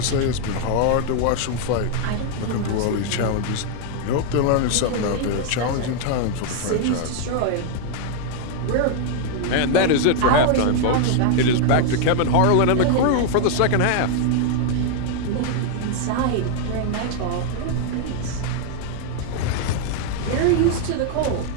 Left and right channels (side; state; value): both; different; correlation 0.00